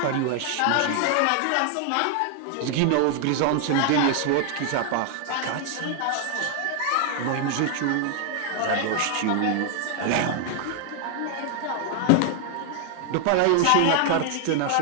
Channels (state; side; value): different; both; correlation 0.00